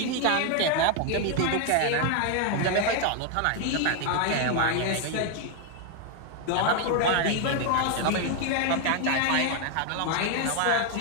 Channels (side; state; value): both; different; correlation 0.00